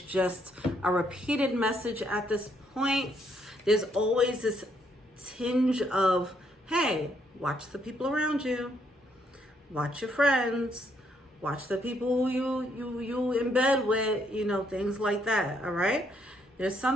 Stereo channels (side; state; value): both; normal; correlation 0.72